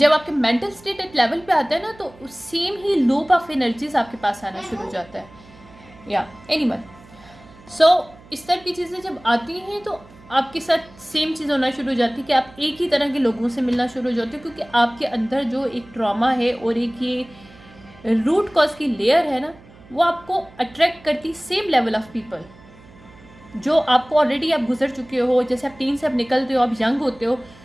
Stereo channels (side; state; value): right; noise; hum, 23 dB below the sound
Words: आपके मेंटल स्टेट एक लेवल पे आता है ना, तो same he loop of energies आपके पास आना शुरू हो जाता है। या एनीवन, सो इस तरह की चीज़ें जब आती हैं, तो आपके साथ सेम चीज़ होना शुरू हो जाती है कि आप एक ही तरह के लोगों से मिलना शुरू हो जाते हो, क्योंकि आपके अंदर जो एक ट्रॉमा है और एक ये रूट कॉज की लेयर है ना, वो आपको अट्रैक्ट करती सेम लेवल ऑफ पीपल जो आपको ऑलरेडी आप गुजर चुके हो। जैसे आप टीन से आप निकलते हो, आप यंग होते हो,